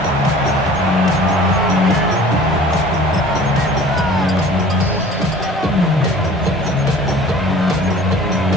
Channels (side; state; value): both; normal; correlation 0.46